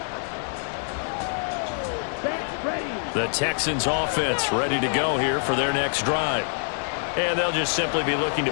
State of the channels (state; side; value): silent; right; digital silence